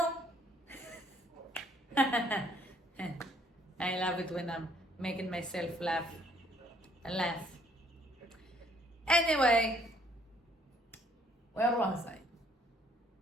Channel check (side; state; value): both; normal; correlation 0.64